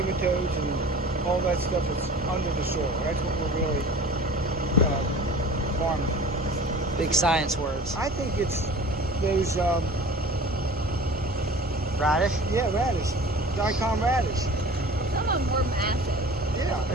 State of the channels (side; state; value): both; normal; correlation 0.41